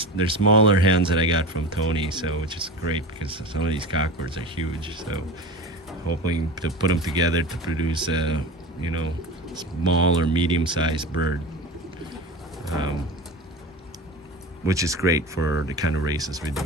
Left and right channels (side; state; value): both; normal; correlation 0.30